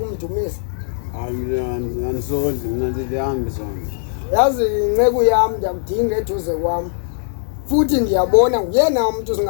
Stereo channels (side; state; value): right; silent; digital silence